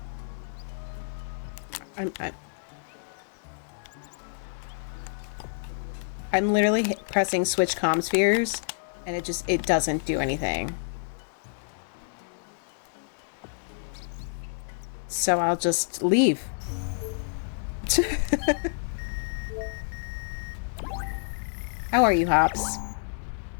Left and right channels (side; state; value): right; silent; 59 dB below the other